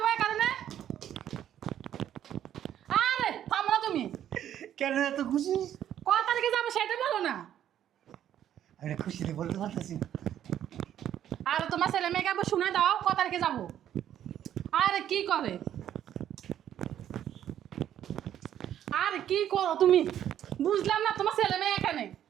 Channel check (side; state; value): left; quieter; 10.7 dB